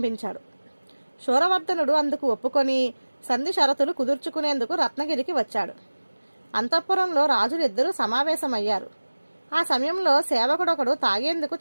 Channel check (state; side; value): inverted; both; correlation -1.00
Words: శూరవర్ధనుడు అందుకు ఒప్పుకొని సంధి షరతులు కుదుర్చుకునేందుకు రత్నగిరికి వచ్చాడు. అంతఃపురంలో రాజులిద్దరూ సమావేశమయ్యారు. ఆ సమయంలో సేవకుడొకడు తాగేందుకు